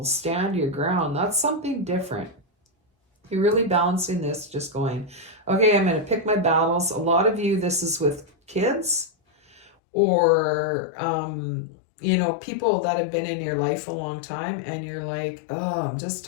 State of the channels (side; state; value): right; drops out; at 9.7 s